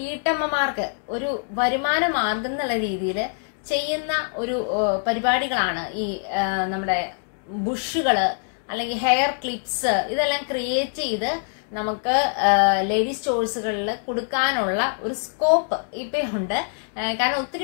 ഒരു വരുമാന മാർഗം എന്നുള്ള രീതിയിൽ ചെയ്യുന്ന ഒരു പരിപാടികളാണ് ഈ നമ്മുടെ ബുഷുകള് അല്ലെങ്കിൽ ഹെയർ ക്ലിപ്സ് ഇതെല്ലാം ക്രിയേറ്റ് ചെയ്ത് നമുക്ക് ലേഡീസ് സ്റ്റോഴ്സുകളിൽ കൊടുക്കാനുള്ള ഒരു സ്കോപ്പ് ഇപ്പൊ ഉണ്ട്. കാരണം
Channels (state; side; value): silent; right; 63 dB below the other